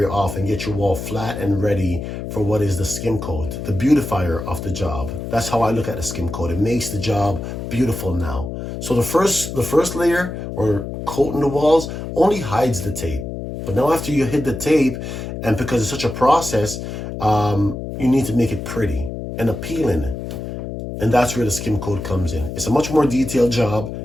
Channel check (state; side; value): noise; left; hum, 7 dB below the sound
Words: off and get your wall flat and ready for what is the skim coat, the beautifier of the job. That's how I look at the skim coat. It makes the job beautiful now. So the first layer, or coating the walls, only hides the tape. But now after you hit the tape, and because it's such a process, you need to make it pretty and appealing. And that's where the skim coat comes in. It's a much more detailed job